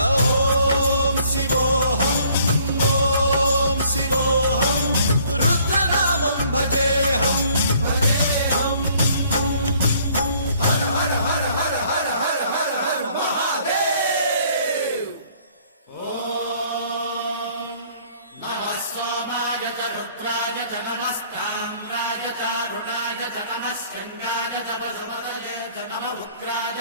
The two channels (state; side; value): inverted; both; correlation -0.60